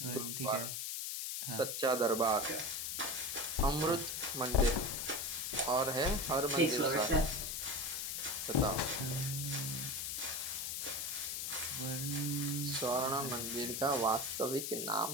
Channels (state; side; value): noise; left; hiss, 3 dB below the sound